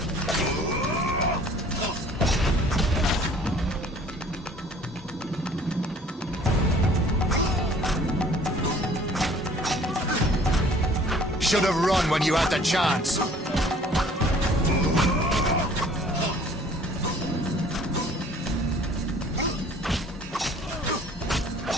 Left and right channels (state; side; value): normal; both; correlation 0.53